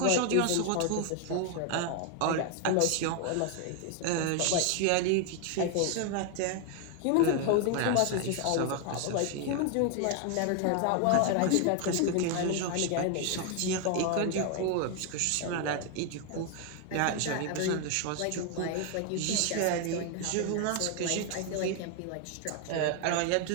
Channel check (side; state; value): both; different; correlation 0.01